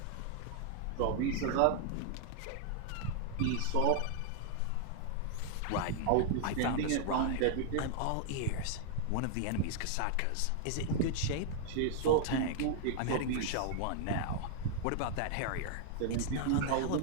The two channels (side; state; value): both; different; correlation 0.00